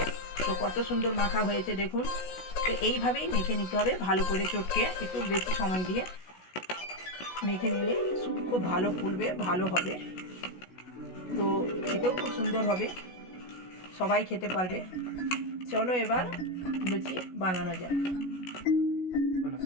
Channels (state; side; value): late; right; 16 ms